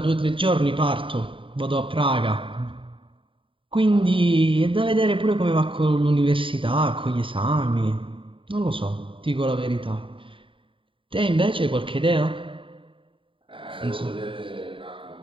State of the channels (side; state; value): left; late; 0.25 ms